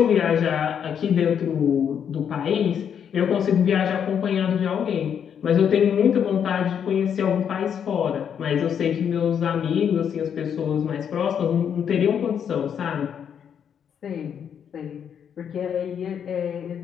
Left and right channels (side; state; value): right; quieter; 8.1 dB